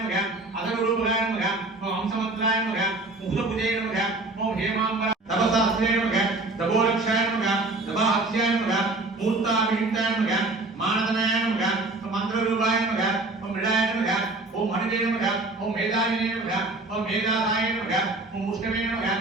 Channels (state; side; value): quieter; left; 3.0 dB